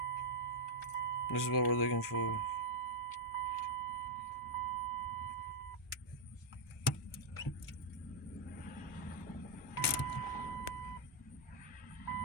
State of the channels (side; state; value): both; normal; correlation -0.04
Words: This is what we're looking for.